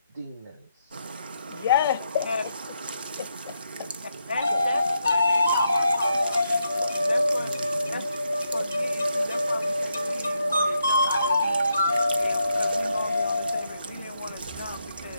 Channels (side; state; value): both; inverted; correlation -0.81